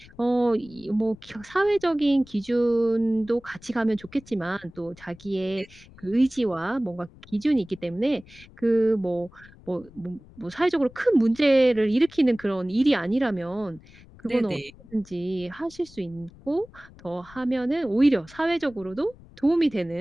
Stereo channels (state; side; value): noise; left; rumble, 22 dB below the sound